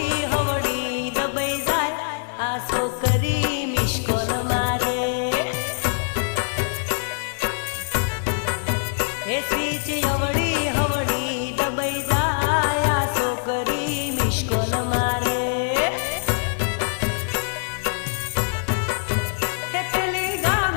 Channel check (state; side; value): silent; right; digital silence